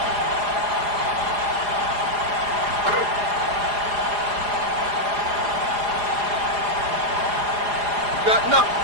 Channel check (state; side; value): late; left; 4.9 ms